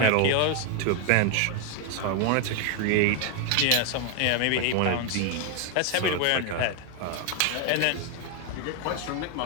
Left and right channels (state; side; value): different; both; correlation 0.01